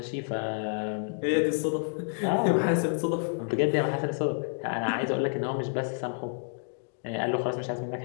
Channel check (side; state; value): right; silent; digital silence